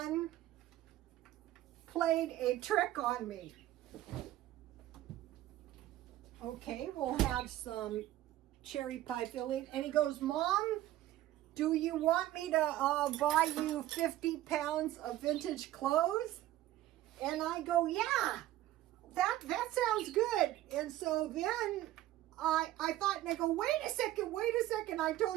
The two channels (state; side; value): quieter; left; 14.6 dB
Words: played a trick on me. Okay, we'll have some cherry pie filling. And he goes, Mom, do you want me to buy you 50 pounds of vintage clothes? And I go, yeah, that sounds good. And so then I thought, and I go, wait a second. I